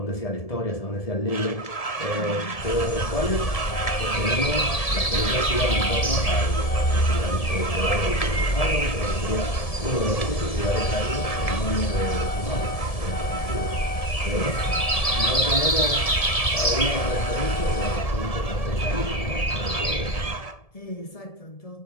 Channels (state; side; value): late; right; 1.7 ms